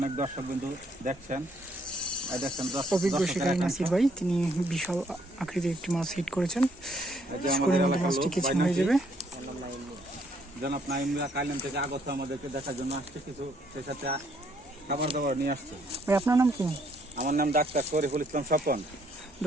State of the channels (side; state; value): both; normal; correlation 0.68